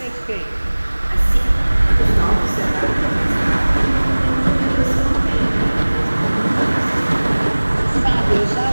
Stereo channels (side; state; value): both; inverted; correlation -1.00